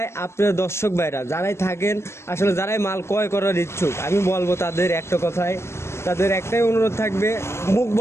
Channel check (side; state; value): right; late; 0.13 ms